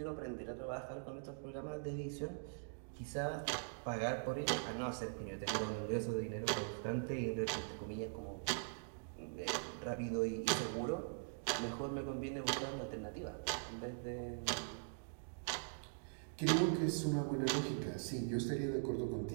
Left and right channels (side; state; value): left; silent; digital silence